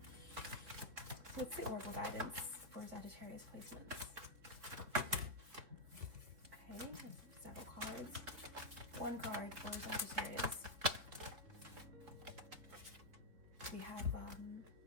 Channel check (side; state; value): left; late; 3.9 ms